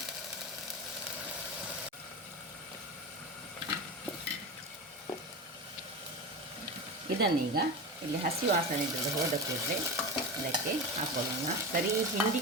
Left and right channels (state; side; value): normal; both; correlation 0.24